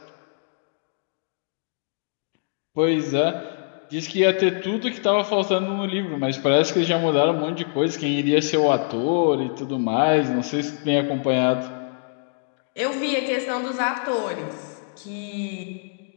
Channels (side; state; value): right; silent; digital silence